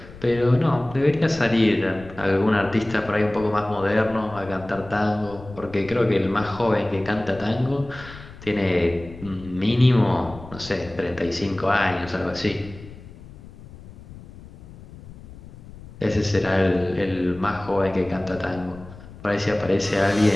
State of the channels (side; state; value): left; noise; rumble, 18 dB below the sound